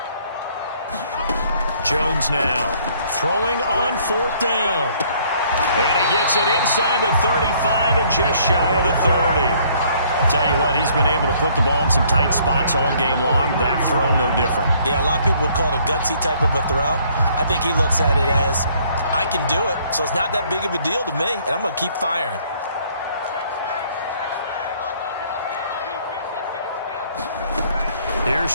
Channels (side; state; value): both; inverted; correlation -0.62